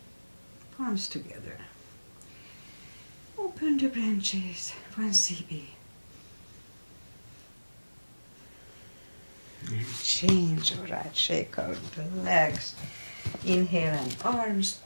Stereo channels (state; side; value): inverted; both; correlation -1.00